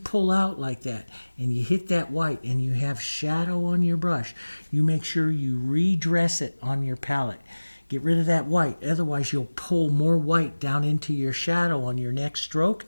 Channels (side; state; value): both; inverted; correlation -1.00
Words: out like that and you hit that white and you have shadow on your brush, you make sure you redress it on your palette. Get rid of that white. Otherwise, you'll pull more white down into your shadow on your next stroke